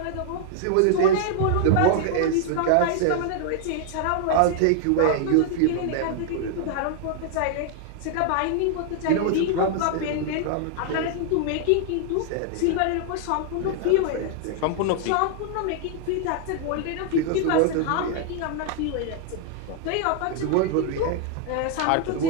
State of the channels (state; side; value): different; both; correlation 0.00